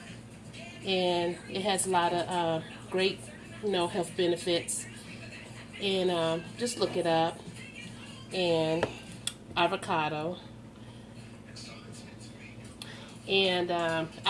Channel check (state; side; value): identical; both; correlation 1.00